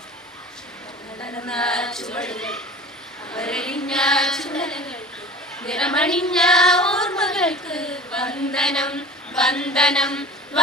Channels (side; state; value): both; normal; correlation 0.38